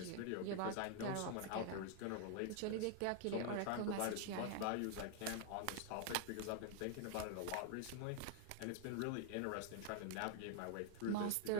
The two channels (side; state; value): both; different; correlation 0.00